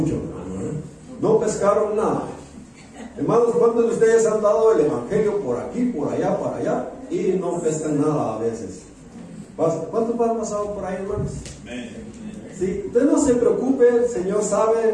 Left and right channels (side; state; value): both; identical; correlation 1.00